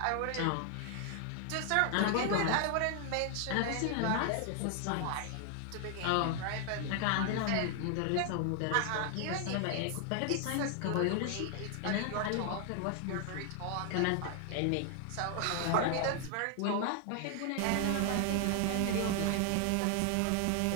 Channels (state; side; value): different; both; correlation 0.00